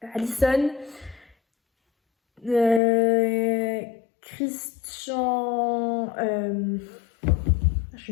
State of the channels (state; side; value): drops out; right; at 2.8 s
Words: Allison, Christian, je